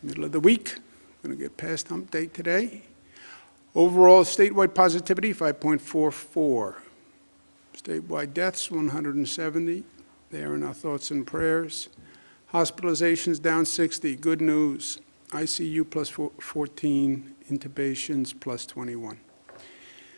middle of the week. We're going to get past hump day today. Overall statewide positivity, 5.44. Statewide deaths, 170. They are in our thoughts and prayers. Hospitalizations down 60. Good news. ICU plus 14. Intubations plus 21.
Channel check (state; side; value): inverted; both; correlation -1.00